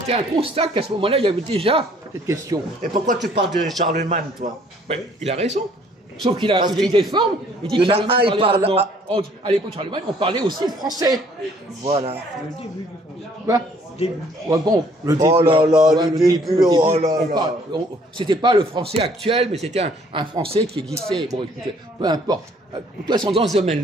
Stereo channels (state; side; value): normal; both; correlation 0.60